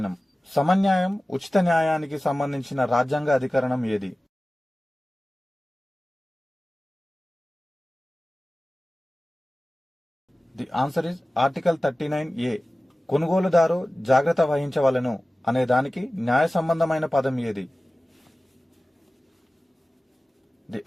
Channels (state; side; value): normal; both; correlation 0.96